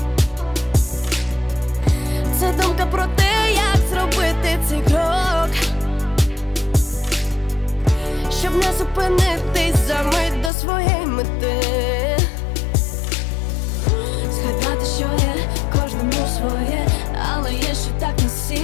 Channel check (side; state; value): right; drops out; at 10.5 s